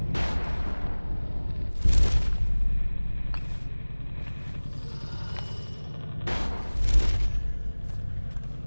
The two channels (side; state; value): both; inverted; correlation -1.00